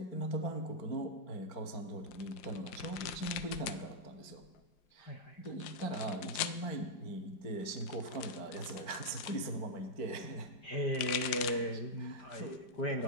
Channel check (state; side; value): late; right; 5.6 ms